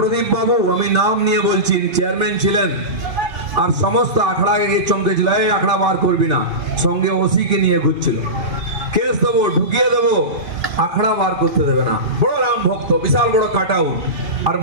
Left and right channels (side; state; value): left; late; 2.5 ms